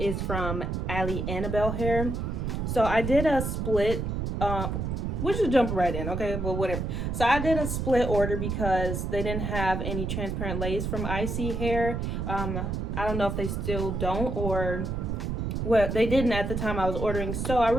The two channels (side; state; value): right; noise; rumble, 2 dB below the sound